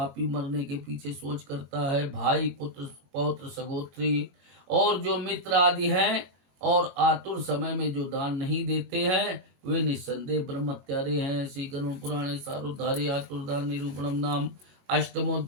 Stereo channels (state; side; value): late; left; 22 ms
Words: मरने के पीछे सोच करता है। भाई, पुत्र, पौत्र, सगोत्री और जो मित्र आदि हैं और आतुर समय में जो दान नहीं देते हैं वे निस्संदेह ब्रह्मत्यारे हैं। श्री गरुड़ पुराणे सारोद्धारे आतुर दान निरूपणम नाम